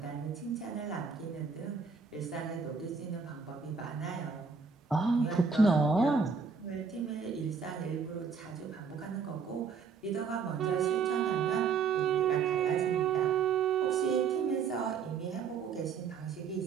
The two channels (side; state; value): left; quieter; 5.7 dB